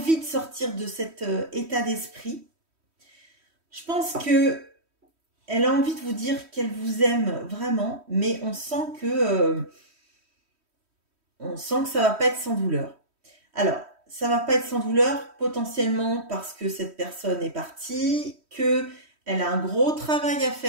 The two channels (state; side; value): late; left; 3.1 ms